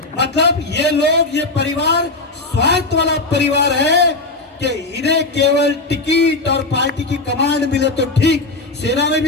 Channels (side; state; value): right; quieter; 3.2 dB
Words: मतलब ये लोग, ये परिवार स्वार्थ वाला परिवार है कि इन्हें केवल टिकट और पार्टी की कमांड मिले तो ठीक। सेना में